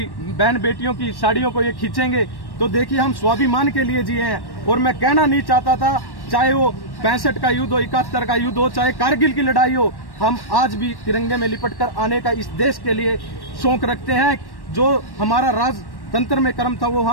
बहन बेटियों की साड़ियों को ये खींचेंगे। तो देखिए, हम स्वाभिमान के लिए जिए हैं। और मैं कहना नहीं चाहता था, चाहे वो 65 का युद्ध हो, 71 का युद्ध हो, चाहे कारगिल की लड़ाई हो, हम आज भी तिरंगे में लिपट कर आने का इस देश के लिए शौक रखते हैं। जो हमारा राजतंत्र में कर्म था वो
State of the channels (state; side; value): late; right; 1.1 ms